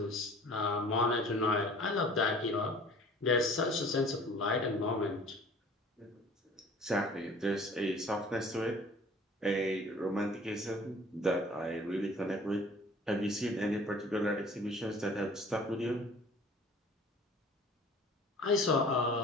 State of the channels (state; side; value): normal; both; correlation 0.48